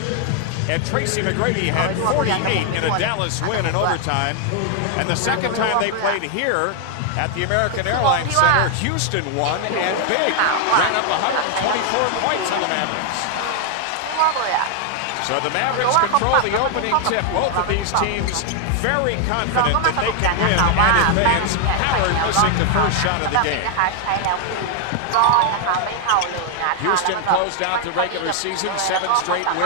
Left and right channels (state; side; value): different; both; correlation 0.00